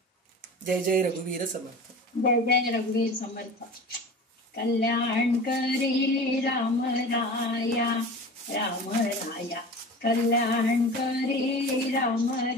जय जय रघुवीर समर्थ. जय जय रघुवीर समर्थ. कल्याणकरी रामराया रामराया, कल्याणकरी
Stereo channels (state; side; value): normal; both; correlation 0.35